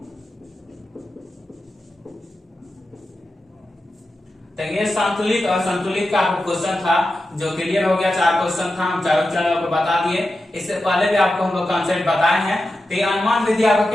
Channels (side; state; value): both; normal; correlation 0.91